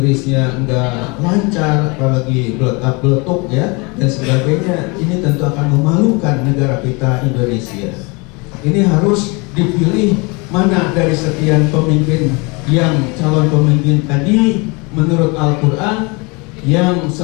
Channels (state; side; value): quieter; right; 28.7 dB